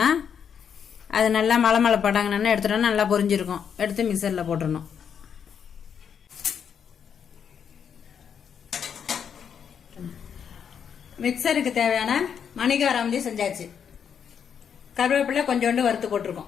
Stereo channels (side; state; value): right; quieter; 7.6 dB